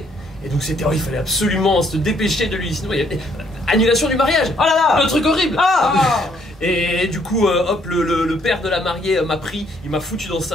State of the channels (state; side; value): normal; both; correlation 0.67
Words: Et donc c'était, il fallait absolument se dépêcher de lui, sinon il y avait annulation du mariage. Oh là là, le truc horrible. Ah. Et du coup, hop, le père de la mariée m'a pris, il m'a foutu dans